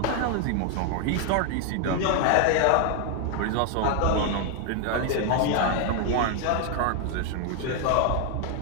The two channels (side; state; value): both; different; correlation 0.01